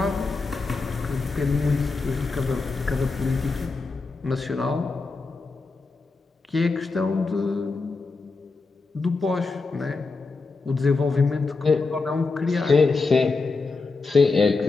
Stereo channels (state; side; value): quieter; right; 4.0 dB